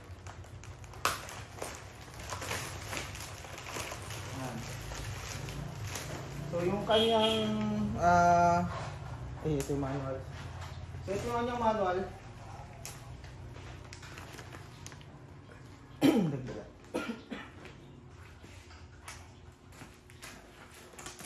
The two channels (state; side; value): identical; both; correlation 1.00